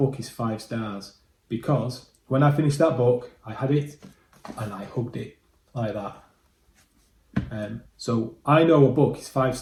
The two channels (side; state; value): both; identical; correlation 1.00